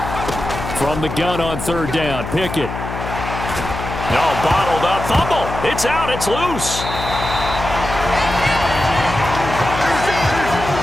From the gun on 3rd down, Pickett. No, bottled up. Fumble. It's out. It's loose.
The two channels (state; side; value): noise; left; hum, 7 dB below the sound